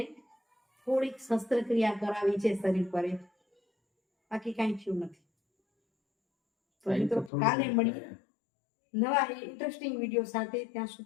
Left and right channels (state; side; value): drops out; right; at 7.3 s